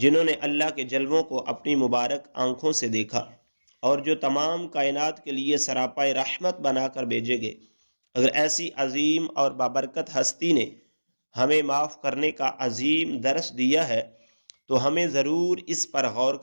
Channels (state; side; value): inverted; both; correlation -1.00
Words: نے اللہ کے جلووں کو اپنی مبارک آنکھوں سے دیکھا، اور جو تمام کائنات کے لیے سراپائے رحمت بنا کر بھیجے گئے۔ اگر ایسی عظیم اور بابرکت ہستی نے ہمیں معاف کرنے کا عظیم درس دیا ہے تو ہمیں ضرور اس پر غور